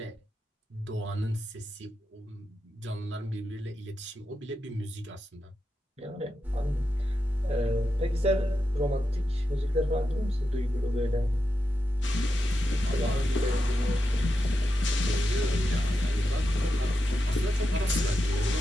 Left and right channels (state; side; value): normal; both; correlation 0.88